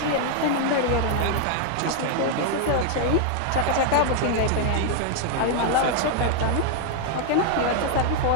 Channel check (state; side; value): different; both; correlation 0.00